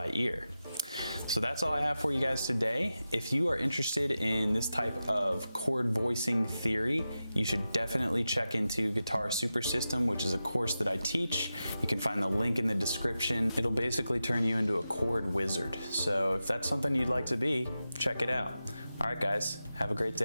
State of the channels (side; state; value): both; inverted; correlation -0.92